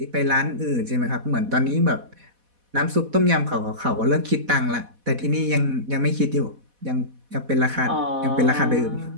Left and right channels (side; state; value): left; late; 4.1 ms